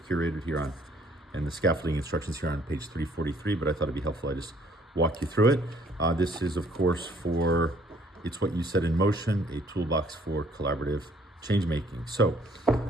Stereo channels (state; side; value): normal; both; correlation 0.62